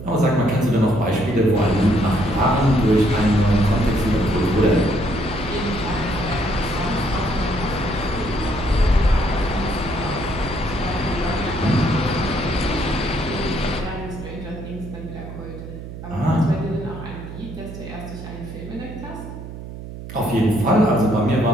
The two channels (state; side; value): noise; right; hum, 11 dB below the sound